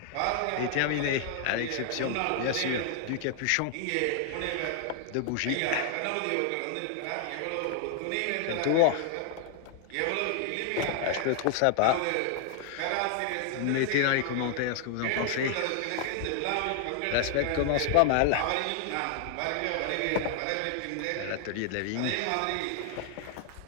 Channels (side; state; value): both; different; correlation 0.00